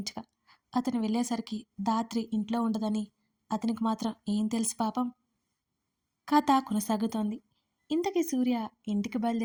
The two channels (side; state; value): both; identical; correlation 1.00